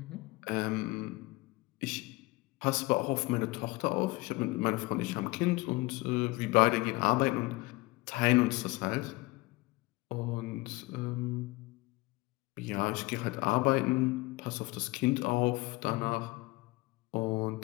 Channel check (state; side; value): quieter; right; 22.1 dB